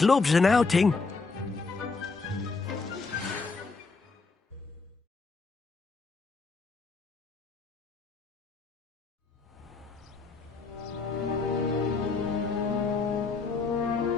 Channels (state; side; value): quieter; right; 4.2 dB